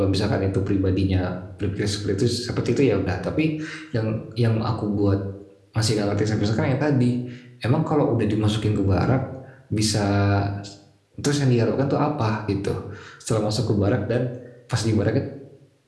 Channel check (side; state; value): both; identical; correlation 1.00